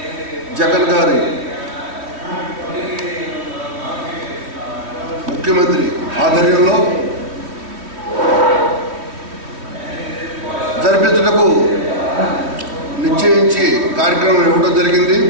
జగన్ గారి ముఖ్యమంత్రి ఆధ్వర్యంలో జరిపించుటకు నిశ్చయించి కార్యక్రమం ఇవ్వడం జరిగింది.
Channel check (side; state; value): left; late; 3.1 ms